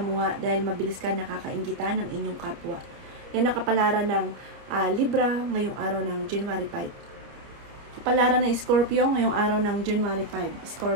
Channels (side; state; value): left; late; 29 ms